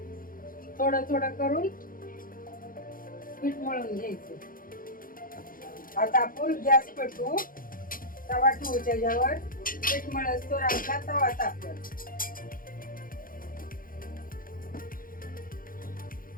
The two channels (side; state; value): right; late; 0.41 ms